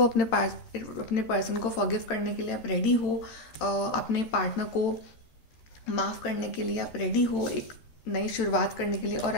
अपने पर्सन को फॉरगिव करने के लिए, आप रेडी हो अपने पार्टनर को माफ़ करने के लिए, आप रेडी हो एक नई शुरुआत करने के लिए। और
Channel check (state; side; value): late; right; 13 ms